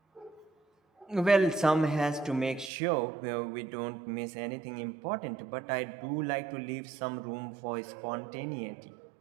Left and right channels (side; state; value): left; drops out; at 2.7 s